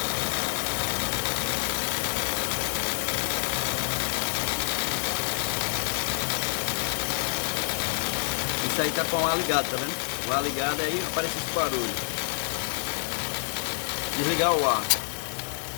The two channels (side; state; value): right; silent; digital silence